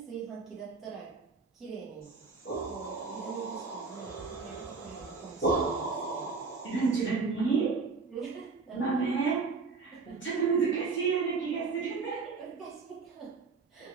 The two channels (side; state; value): left; quieter; 4.6 dB